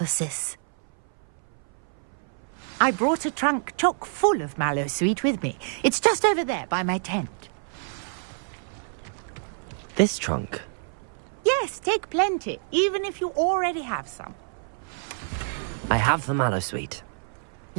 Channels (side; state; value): left; silent; 58 dB below the other